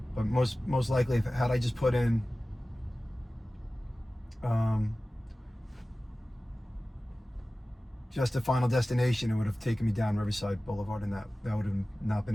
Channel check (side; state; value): both; normal; correlation 0.97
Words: But most likely, had I just put in just the final destination, it would have taken me down Riverside Boulevard, and that would have not been